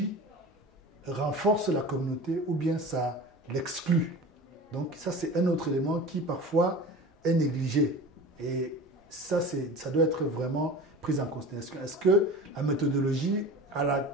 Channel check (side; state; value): both; normal; correlation 0.36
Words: renforce la communauté ou bien ça l'exclut. Donc ça, c'est un autre élément qui parfois est négligé. Et ça doit être vraiment pris en considération. Est-ce que la méthodologie, à